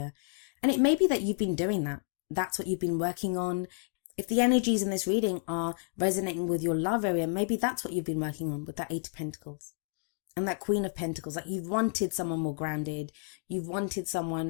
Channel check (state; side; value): silent; right; 57 dB below the other